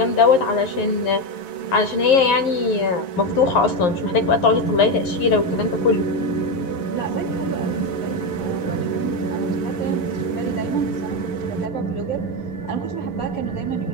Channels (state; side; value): late; right; 11 ms